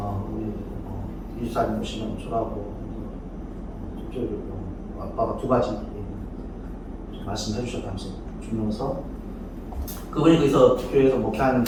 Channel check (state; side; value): identical; both; correlation 1.00